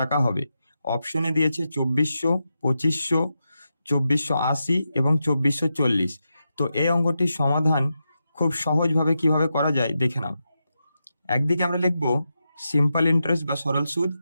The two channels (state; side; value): inverted; both; correlation -0.88